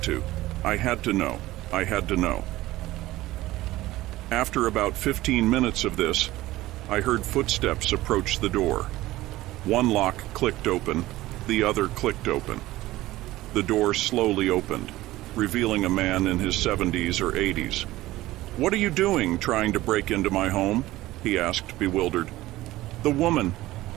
to. I had to know. I had to know. After about 15 minutes of this, I heard footsteps approach the door. One lock clicked open, the other clicked open. The door slowly opened, revealing a man in his 70s or 80s. "What are you doing, trying to break into my home?" he asked, bewildered. "The woman.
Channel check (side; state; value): left; quieter; 17.0 dB